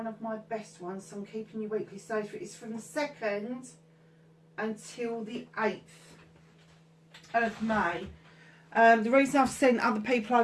of my best ones, so I'm keeping you weekly. So it's from the 2nd until the 8th. Of May. The reason I've sent other people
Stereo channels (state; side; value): identical; both; correlation 1.00